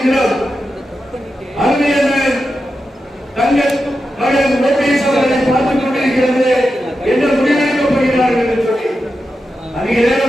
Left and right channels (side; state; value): both; normal; correlation 0.89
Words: அருமையான தங்கள் மகன் ஓபிஎஸ் அவர்களை பார்த்துக் கொண்டிருக்கிறது என்ன முடிவெடுக்கப் போகிறார்கள் என்று சொல்லி அதிக